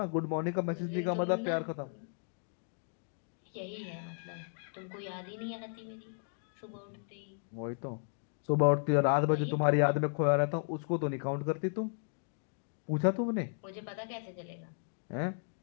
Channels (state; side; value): silent; right; digital silence